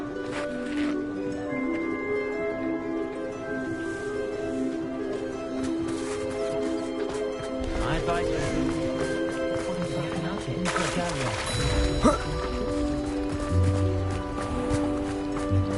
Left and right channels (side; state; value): both; identical; correlation 1.00